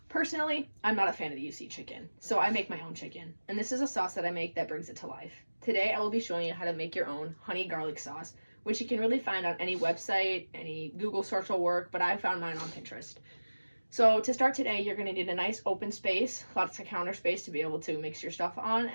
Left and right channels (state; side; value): inverted; both; correlation -1.00